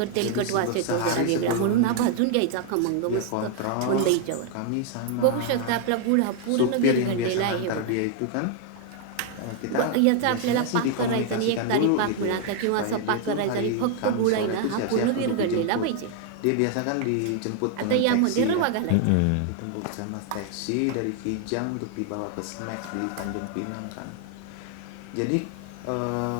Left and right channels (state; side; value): different; both; correlation 0.00